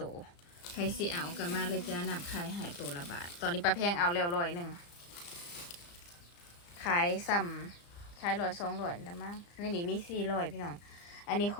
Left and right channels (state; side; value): late; right; 35 ms